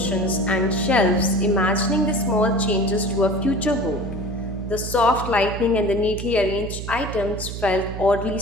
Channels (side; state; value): right; noise; hum, 7 dB below the sound